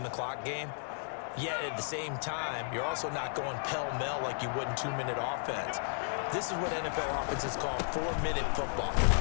the clock game. Yet at the same time, you're also not going pell-mell like you would in 2-minute offense. This is what NFL offenses call 4-minute football.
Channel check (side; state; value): right; silent; digital silence